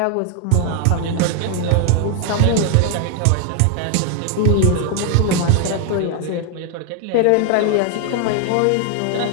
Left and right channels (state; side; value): different; both; correlation 0.00